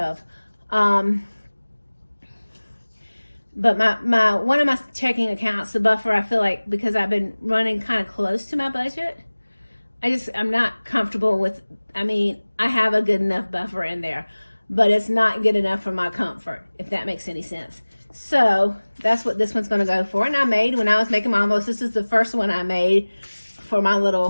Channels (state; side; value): inverted; both; correlation -1.00